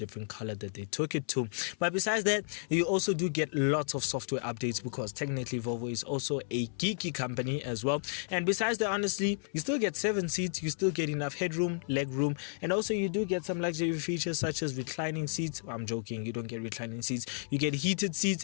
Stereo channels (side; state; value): right; silent; 56 dB below the other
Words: color that they took it to. But besides that, you also do get lots of software updates, because technically Volvo is also a geeky company as well. And besides that, honestly, you still get 7 seats, you still get enough headroom, leg room, and also you do get some luxury features such as reclining seats. I'm joking, you don't get reclining seats, you get heated seats